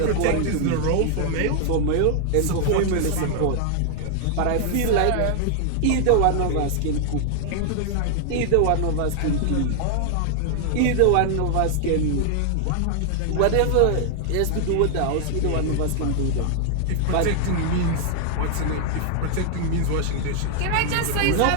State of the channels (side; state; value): both; different; correlation 0.00